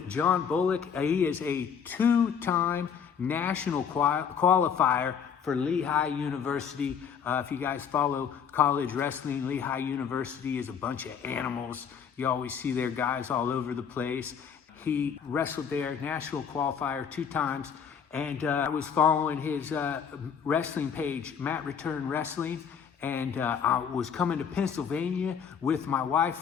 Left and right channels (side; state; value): right; quieter; 7.2 dB